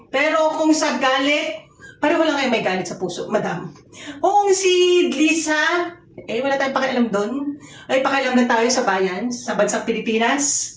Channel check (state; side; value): identical; both; correlation 1.00